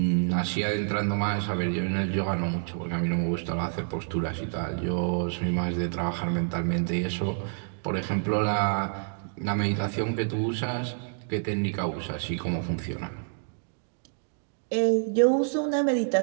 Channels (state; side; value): silent; left; digital silence